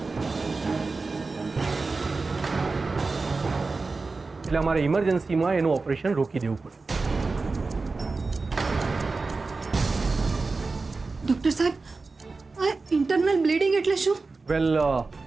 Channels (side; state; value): left; quieter; 3.9 dB